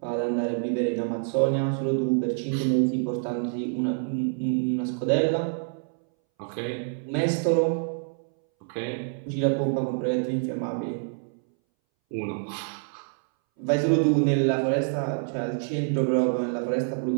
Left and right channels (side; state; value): left; silent; 60 dB below the other